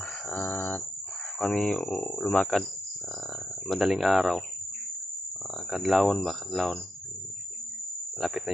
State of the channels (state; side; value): normal; both; correlation 0.85